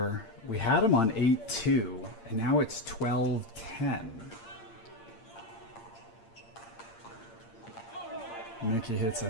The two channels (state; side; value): late; right; 8.7 ms